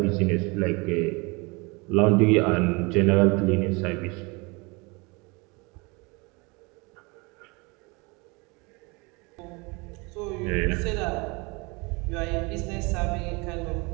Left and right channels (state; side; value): quieter; left; 27.7 dB